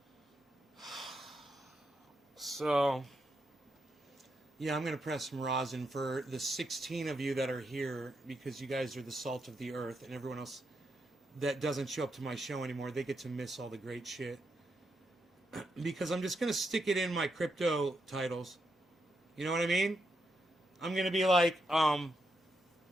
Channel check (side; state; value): both; normal; correlation 0.83